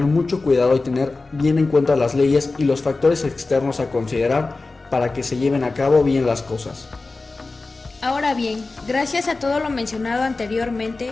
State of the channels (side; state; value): right; quieter; 3.6 dB